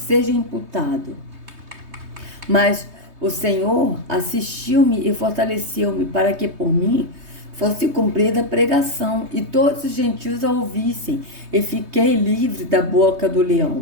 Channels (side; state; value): left; late; 3.2 ms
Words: imputado. Mas o Senhor assistiu-me e fortaleceu-me, para que por mim fosse cumprida a pregação, e todos os gentios a ouvissem, e fiquei livre da boca do